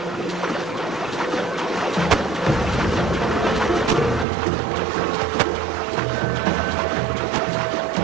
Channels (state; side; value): drops out; left; at 4.2 s